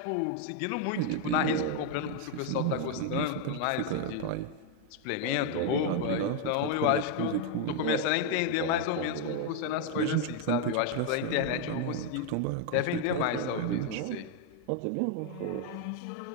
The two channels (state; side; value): different; both; correlation 0.01